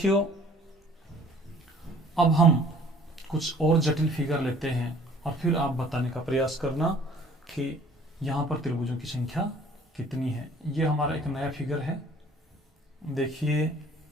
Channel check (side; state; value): both; normal; correlation 0.54